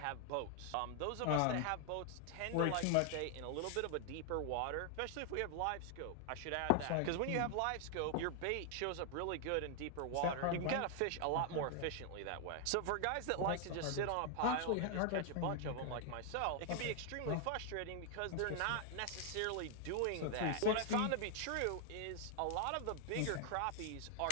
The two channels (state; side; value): different; both; correlation 0.00